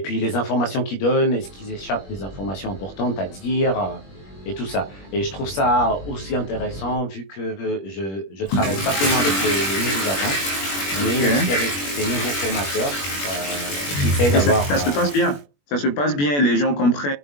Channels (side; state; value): right; late; 21 ms